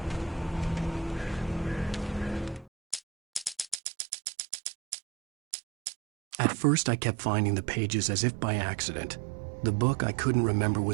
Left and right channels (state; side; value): drops out; left; at 3.8 s